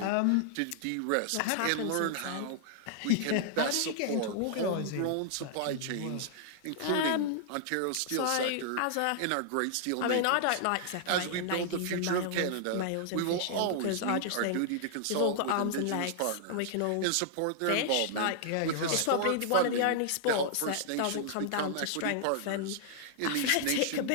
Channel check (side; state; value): both; different; correlation -0.01